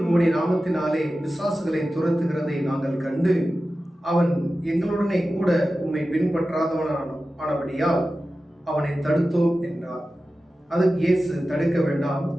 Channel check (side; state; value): both; normal; correlation 0.94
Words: உம்முடைய நாமத்தினாலே பிசாசுகளை துரத்துகிறதை நாங்கள் கண்டு அவன் எங்களுடனே கூட உம்மை பின்பற்றாதவனானபடியால் அவனை தடுத்தோம் என்றார். அதுக்கு இயேசு, தடுக்க வேண்டாம்,